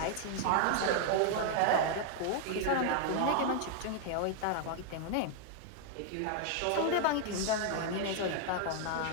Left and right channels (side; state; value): both; different; correlation 0.00